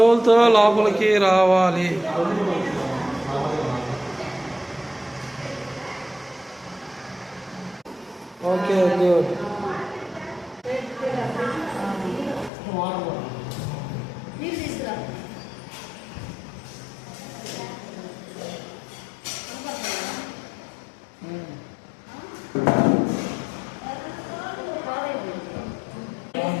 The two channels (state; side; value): drops out; right; at 12.5 s